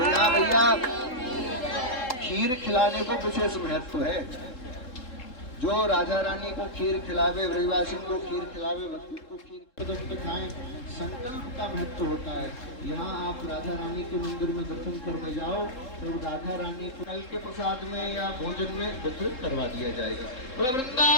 भैया खीर खिलाने को विशेष महत्व है। जो राधा रानी को खीर खिलावे, ब्रजवासी को खीर खिलावे, भक्ति को खीर कदम पे खाएं, संकल्प का महत्व होता है। यहाँ आप राधा रानी के मंदिर में दर्शन करने जाओ तो राधा रानी को कल के प्रसाद में या भोजन में वितरित करवा दिया जाएगा।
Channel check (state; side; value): late; right; 3.8 ms